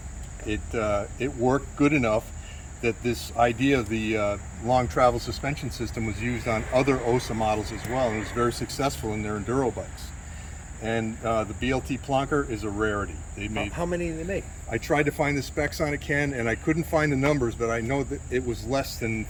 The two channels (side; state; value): both; identical; correlation 1.00